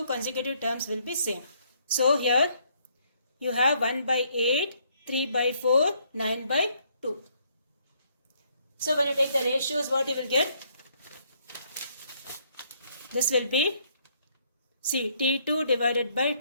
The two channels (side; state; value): both; inverted; correlation -0.68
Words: consecutive terms will be same. So here you have 1 by 8, 3 by 4, 9 by 2. So when you take the ratios, what you will get? This will be, see, T2 divided by